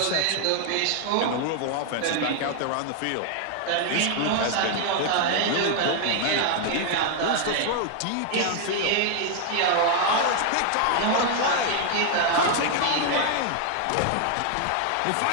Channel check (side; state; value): both; different; correlation 0.00